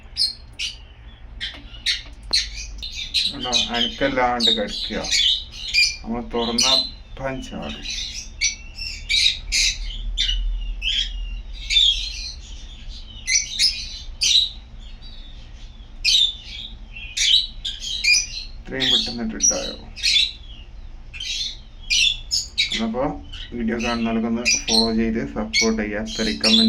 കേട്ടോ. അനക്കല്ലാണ്ട് കടിക്കുക. നമ്മൾ തുറന്ന പഞ്ചാടും. ഇത്രയും പെട്ടെന്നിട്ടുണ്ടായോ? അപ്പോൾ വീഡിയോ കാണുന്നവർക്കൊന്ന് ഫോളോ ചെയ്ത് സപ്പോർട്ട് ചെയ്യുക.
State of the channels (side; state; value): both; identical; correlation 1.00